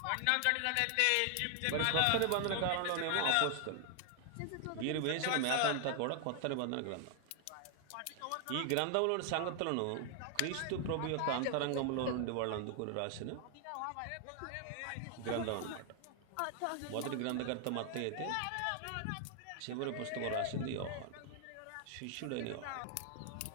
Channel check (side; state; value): both; different; correlation 0.00